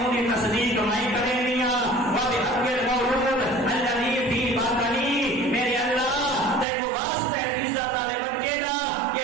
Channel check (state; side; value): drops out; left; at 6.7 s